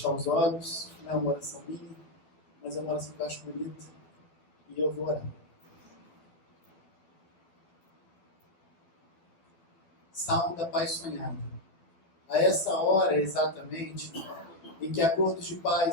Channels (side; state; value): right; late; 12 ms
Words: os olhos, não é uma oração minha, mas é uma oração que eu acho bonita. E eu vou orar. Salmo da Paz Sonhada. A essa hora, exatamente, em que acordos de